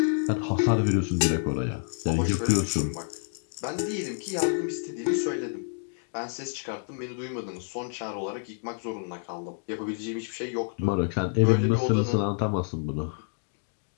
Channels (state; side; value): silent; right; digital silence